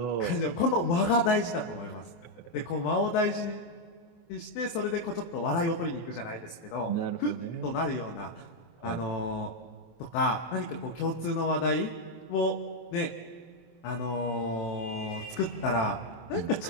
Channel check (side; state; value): right; late; 24 ms